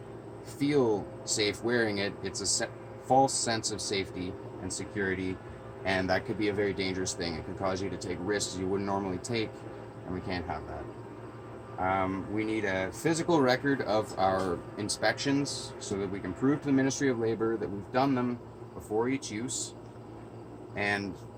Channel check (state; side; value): identical; both; correlation 1.00